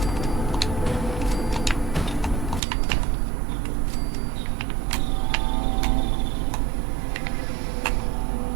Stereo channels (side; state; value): left; drops out; at 2.6 s